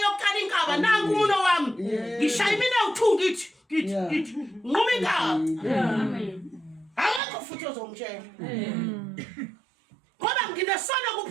yokuqala inkaba nangu umuno wami ngishaya mina u2 ngithi nquma inkaba akekho futhi ozomtshela ngoba nginesono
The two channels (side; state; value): left; drops out; at 7.2 s